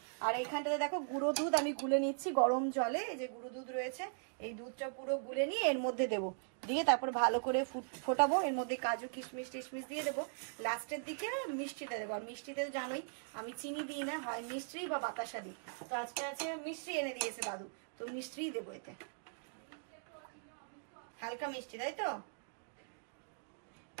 আর এইখানটাতে দেখো গুঁড়ো দুধ আমি গুলে নিচ্ছি গরম জলে। এই যে গুঁড়ো দুধ রয়েছে, এই দুধটা পুরো গুলে নিয়ে এর মধ্যে দেবো, দিয়ে তারপর ভালো করে ফোটাবো। এর মধ্যে কাজু কিশমিশ টিশমিশ দিয়ে দেবো। লাস্টের দিকে মিষ্টিটা দেবো। আর মিষ্টিতে জানোই আমি চিনি দিই না, হয় মিষ্টি বা বাতাসা দিই। তো আজকে আছে মিষ্টি এনে দিয়েছে দাদু, তো মিষ্টিই দেবো এতে, হালকা মিষ্টি, তাই তো?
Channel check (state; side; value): silent; left; digital silence